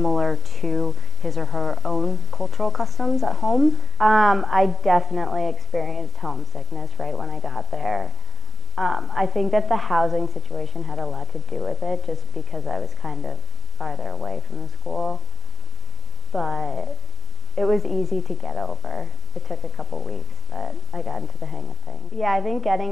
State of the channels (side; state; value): both; normal; correlation 0.97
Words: to his or her own cultural customs at home. I definitely experienced homesickness right when I got there. I think that the housing situation had a lot to do with it, just because I was kind of farther away from the school. But it was easy to get over. It took a couple weeks, but I got into the hang of things. Yeah, I think